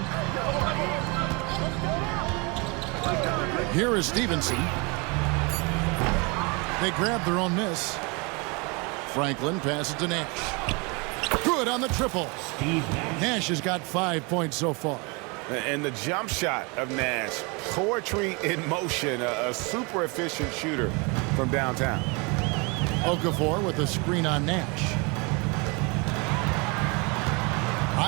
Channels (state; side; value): quieter; left; 29.6 dB